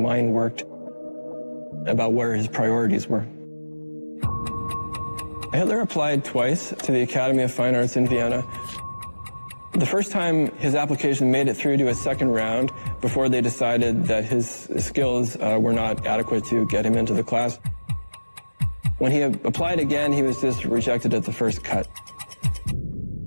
worked, about where his priorities were. Hitler applied twice to the Academy of Fine Arts in Vienna. The first time his application made it through to a second round before they decided that his skills were not adequate to get him into the class. When he applied again, he was just rejected at the first cut.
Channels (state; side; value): inverted; both; correlation -1.00